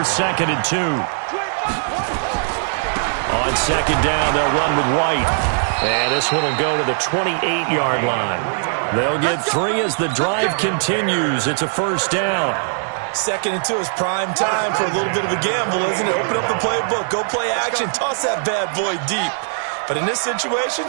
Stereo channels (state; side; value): silent; left; digital silence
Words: 2nd and 2. On 2nd down, they'll run with White. And this one will go to the 28-yard line. They'll get 3 as the drive continues. It's a first down. 2nd and 2 is prime time for a little bit of a gamble, isn't it? Open up the playbook, go play action, toss that bad boy deep. But in this situation,